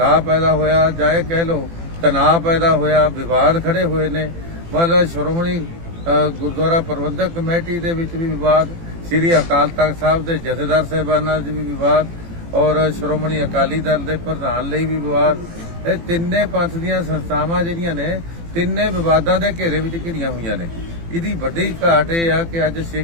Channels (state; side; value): late; left; 18 ms